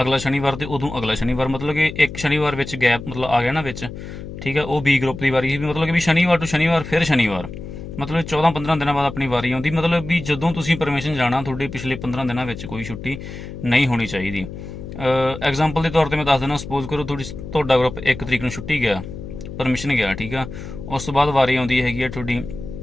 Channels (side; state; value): left; noise; hum, 10 dB below the sound